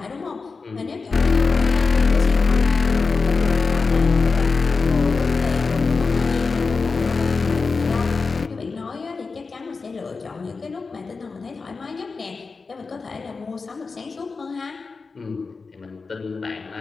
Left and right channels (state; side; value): quieter; right; 4.4 dB